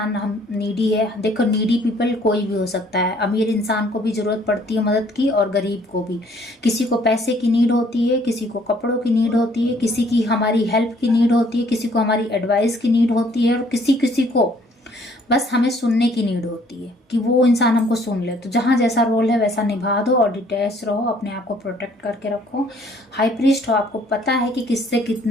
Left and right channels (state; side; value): normal; both; correlation 0.61